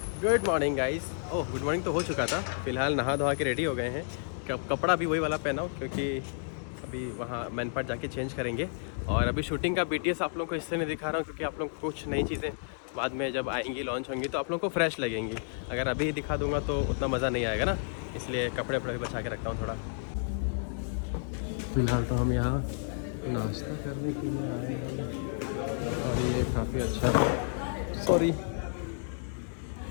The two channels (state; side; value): silent; right; digital silence